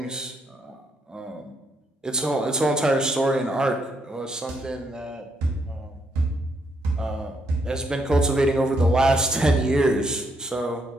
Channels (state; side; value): normal; both; correlation 0.75